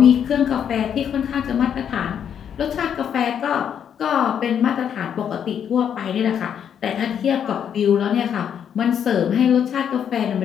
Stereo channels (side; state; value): right; quieter; 8.5 dB